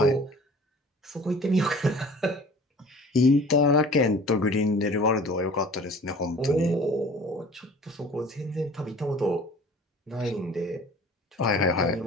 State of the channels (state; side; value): normal; both; correlation 0.46